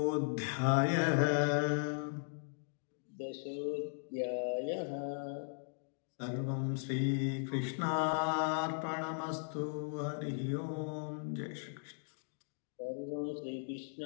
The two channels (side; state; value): right; silent; digital silence